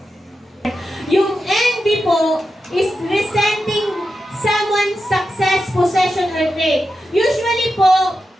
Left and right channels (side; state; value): both; normal; correlation 0.89